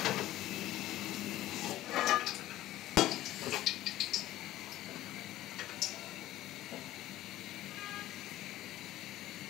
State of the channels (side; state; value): right; quieter; 14.9 dB